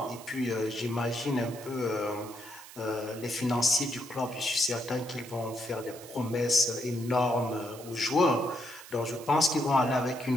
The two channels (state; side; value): noise; right; hiss, 17 dB below the sound